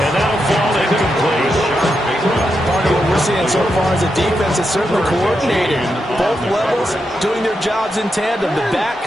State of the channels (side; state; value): both; normal; correlation 0.85